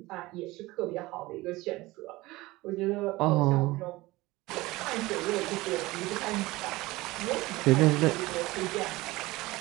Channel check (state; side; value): quieter; left; 20.1 dB